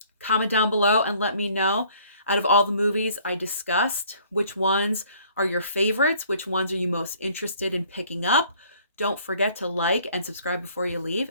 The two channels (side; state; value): both; inverted; correlation -0.58